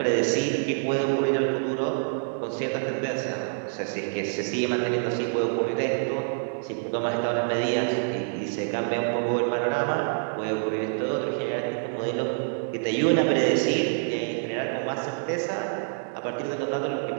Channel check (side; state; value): left; silent; 58 dB below the other